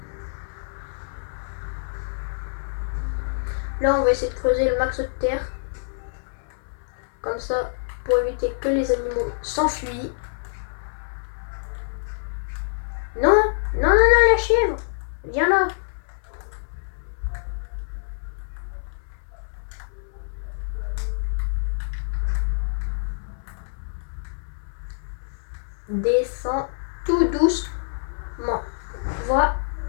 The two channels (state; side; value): silent; right; 60 dB below the other